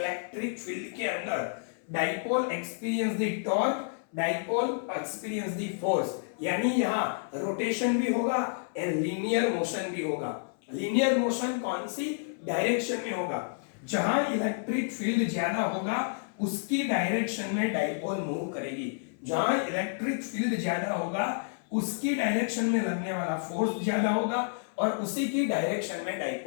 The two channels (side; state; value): right; silent; 58 dB below the other